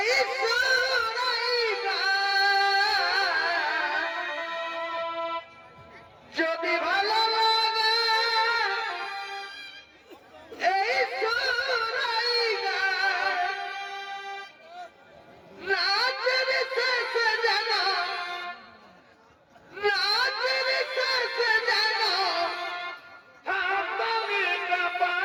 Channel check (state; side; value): identical; both; correlation 1.00